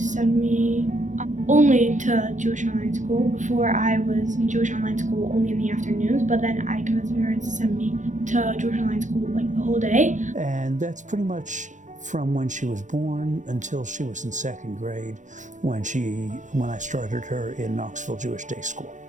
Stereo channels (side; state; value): left; late; 0.36 ms